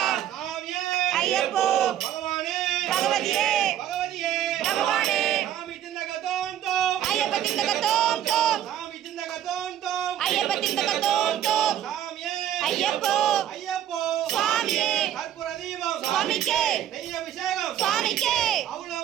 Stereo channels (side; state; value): left; quieter; 11.0 dB